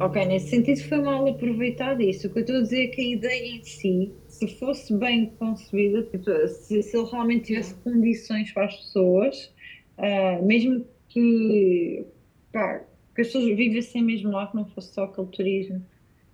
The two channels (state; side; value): identical; both; correlation 1.00